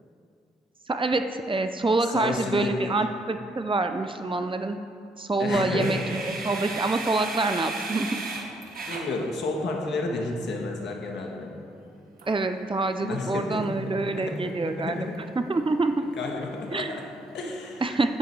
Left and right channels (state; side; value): normal; both; correlation 0.70